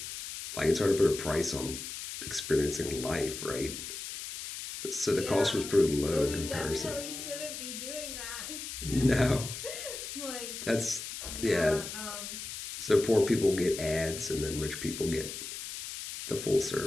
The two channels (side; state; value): left; noise; hiss, 8 dB below the sound